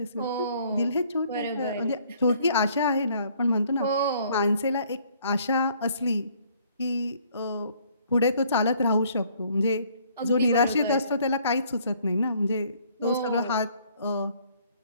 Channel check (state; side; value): inverted; both; correlation -0.62